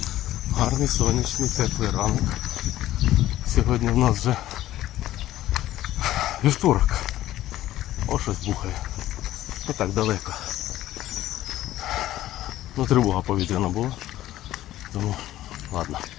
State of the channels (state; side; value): quieter; right; 14.2 dB